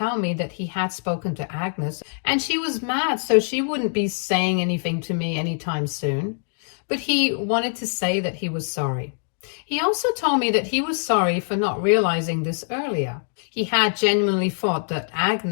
me that he had spoken to Agnes, and she was mad, so she wouldn't be saying anything to me anytime soon. But he wanted to say that he was sorry. He also told me that he was sorry for not realizing this earlier. He had genuinely thought that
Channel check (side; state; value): right; silent; digital silence